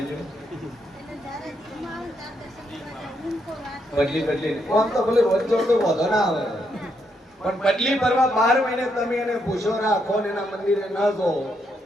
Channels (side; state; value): both; normal; correlation 0.77